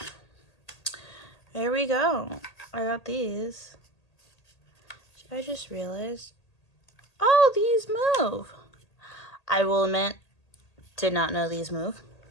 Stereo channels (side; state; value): right; late; 1.8 ms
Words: There we go. I got these. I just realized, oh, these move. I will admit, did not know these move.